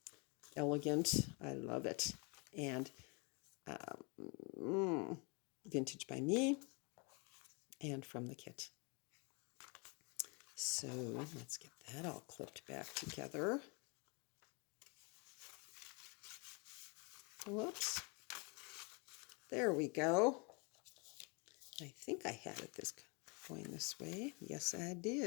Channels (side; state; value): right; quieter; 32.0 dB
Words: elegant. I love it. And Vintage by Me and from the kit. So let's get that all clipped back together. Whoops. There we go. I think I had it going this way. Yes, I